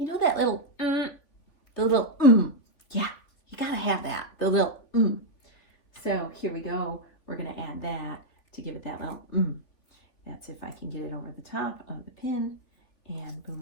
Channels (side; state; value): right; late; 3.5 ms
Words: know, that little, yeah, you gotta have that, the little, So here we go. We're gonna add that to give it that little, That's if I can get it over the top of the pin, and